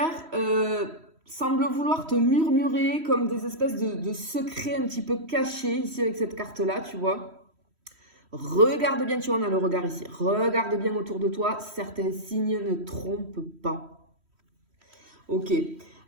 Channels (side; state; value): left; late; 3.1 ms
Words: semble vouloir te murmurer comme des espèces de secrets un petit peu cachés ici avec cette carte-là, tu vois. Regarde bien, tu vois, on a le regard ici. Regarde bien autour de toi, certains signes ne trompent pas. Ok.